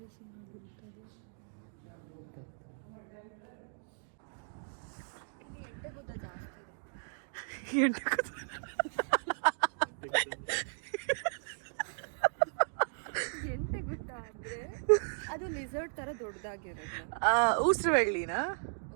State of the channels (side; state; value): left; silent; digital silence